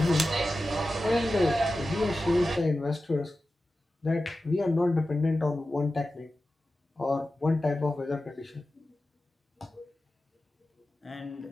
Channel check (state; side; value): normal; both; correlation 0.93